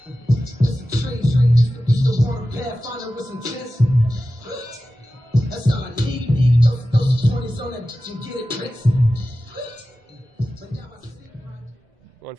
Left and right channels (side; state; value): both; normal; correlation 0.94